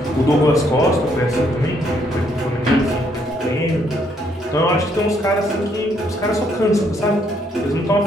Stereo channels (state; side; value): normal; both; correlation 0.70